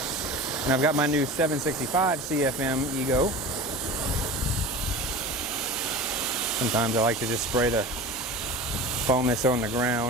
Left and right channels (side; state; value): both; normal; correlation 0.33